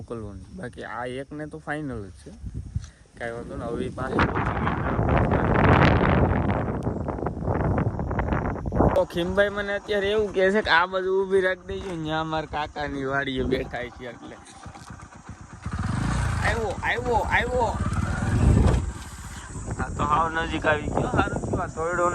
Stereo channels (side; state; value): both; identical; correlation 1.00